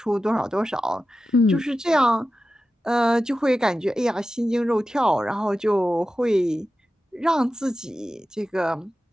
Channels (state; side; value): normal; both; correlation 0.93